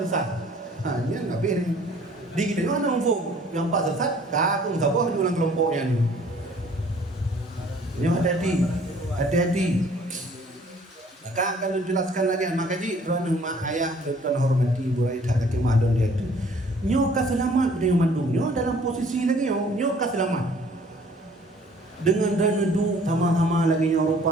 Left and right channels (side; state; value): both; normal; correlation 0.56